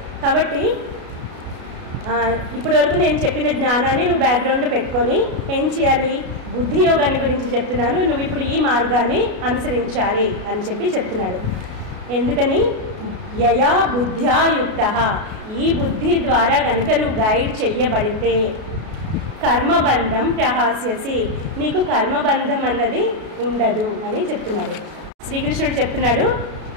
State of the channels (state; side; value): late; left; 33 ms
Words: కాబట్టి ఇప్పటి వరకు నేను చెప్పిన జ్ఞానాన్ని నువ్వు బ్యాక్గ్రౌండ్లో పెట్టుకొని ఏం చేయాలి? బుద్ధి యోగాన్ని గురించి చెప్తున్నాను, నువ్వు ఇప్పుడు ఈ మార్గాన్ని అనుసరించాలి అని చెప్పి చెప్తున్నాడు. ఎందుకని? యయా బుద్ధ్యా యుక్త, ఈ బుద్ధి ద్వారా కనుక నువ్వు గైడ్ చెయ్యబడితే కర్మబంధం ప్రహాస్యసి, నీకు కర్మబంధం అన్నది ఉండదు అని చెప్తున్నాడు. శ్రీకృష్ణుడు చెప్తున్నాడు,